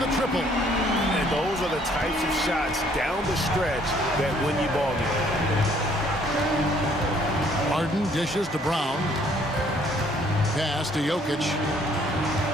triple. And those are the types of shots down the stretch that win you ball games. Harden dishes to Brown. Pass to Jokic.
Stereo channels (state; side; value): normal; both; correlation 0.62